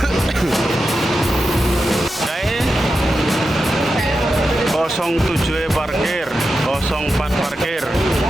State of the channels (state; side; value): normal; both; correlation 0.90